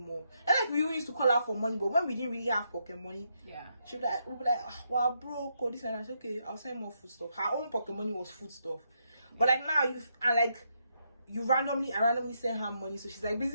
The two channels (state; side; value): inverted; both; correlation -0.79